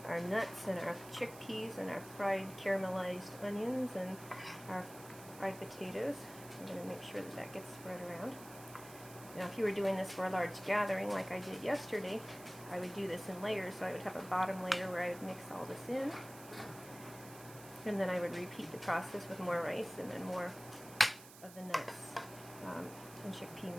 our nuts and our chickpeas and our fried caramelized onions and our fried potatoes. I'm going to make sure that that gets spread around. Now if you were doing this for a large gathering like I did yesterday, I would do this in layers, so I would have a bottom layer where I would mix all this in, and then I would repeat the process with more rice and then more of the nuts and chickpea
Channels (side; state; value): right; noise; hiss, 17 dB below the sound